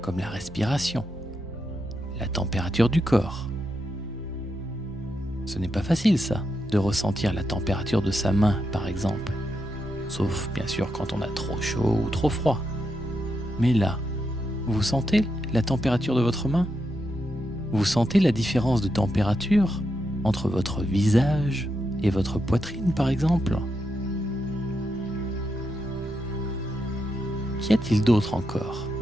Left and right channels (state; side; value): normal; both; correlation 0.84